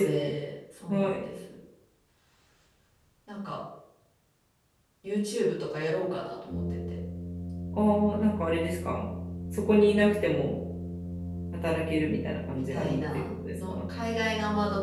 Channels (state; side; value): identical; both; correlation 1.00